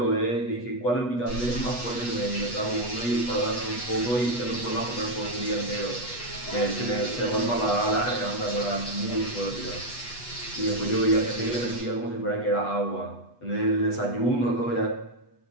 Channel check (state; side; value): late; right; 8.2 ms